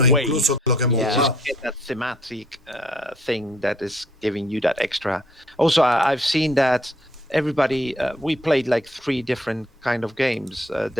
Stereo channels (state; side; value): normal; both; correlation 0.64